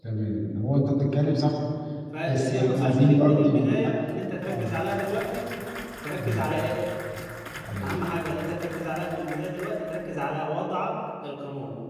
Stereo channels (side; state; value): both; identical; correlation 1.00